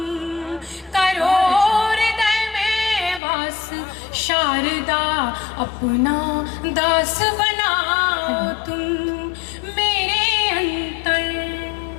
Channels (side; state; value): right; drops out; at 3.2 s